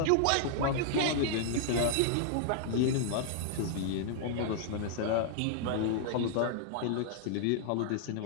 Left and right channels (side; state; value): both; different; correlation -0.01